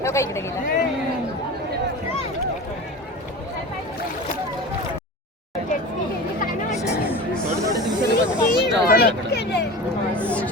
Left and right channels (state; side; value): normal; both; correlation 0.32